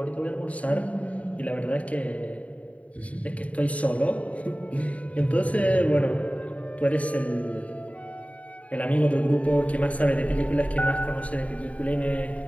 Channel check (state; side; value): late; right; 0.067 ms